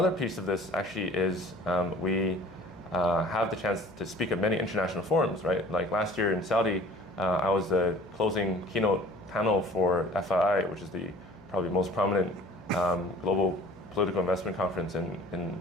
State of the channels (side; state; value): left; noise; hum, 24 dB below the sound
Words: piece of this actually is we have the chance to speak at many international forums, right? Like last year in Saudi, I was the closing keynote panel for FII, which is the probably most prominent global political investment conference in